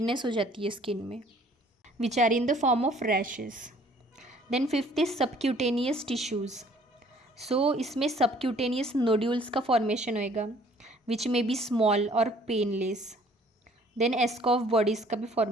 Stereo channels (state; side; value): normal; both; correlation 0.57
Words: हो जाती है स्किन में which are in the form of rashes. Then fifth is subcutaneous tissues. So इसमें सबक्यूटेनियस नोड्यूल्स का फॉर्मेशन होएगा विच में बी स्मॉल और पेनलेस. देन एस्कॉफ बॉडीज़ का भी